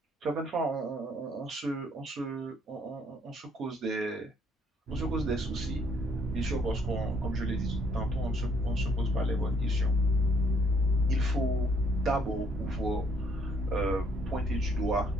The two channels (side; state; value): both; normal; correlation 0.66